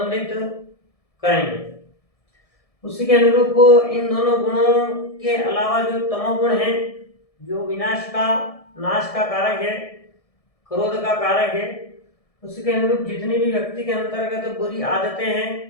करेंगे। उसी के अनुरूप इन दोनों गुणों के अलावा जो तमोगुण है, जो विनाश का, नाश का कारक है, क्रोध का कारक है, उसी के अनुरूप जितनी भी व्यक्ति के अंतर्गत बुरी आदतें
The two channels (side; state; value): right; late; 1.7 ms